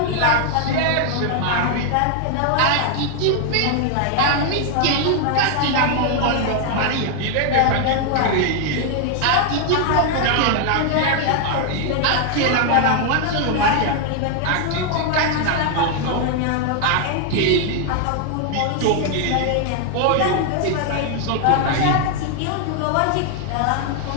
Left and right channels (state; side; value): different; both; correlation 0.00